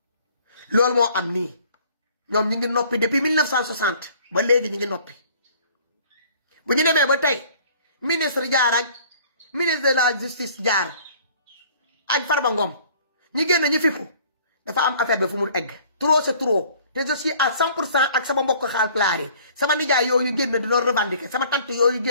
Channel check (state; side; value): inverted; both; correlation -0.54